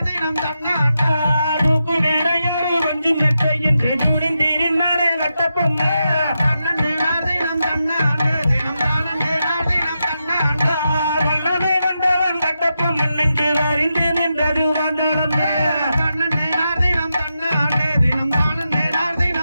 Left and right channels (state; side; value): inverted; both; correlation -0.87